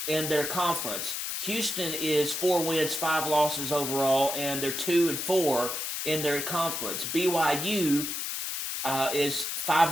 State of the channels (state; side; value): noise; left; hiss, 3 dB below the sound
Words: in their conference. Houston is 4 wins, 5 losses overall, and they're 2-4 in their conference. BYU is